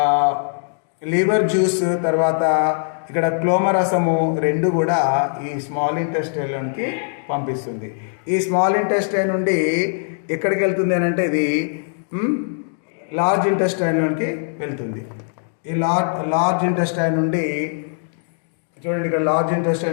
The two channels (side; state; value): right; silent; digital silence